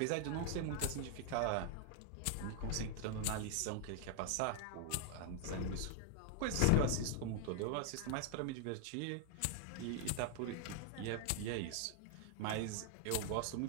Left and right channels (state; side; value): different; both; correlation 0.00